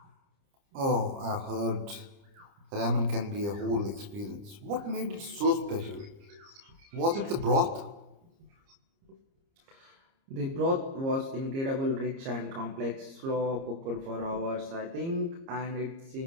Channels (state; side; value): late; left; 30 ms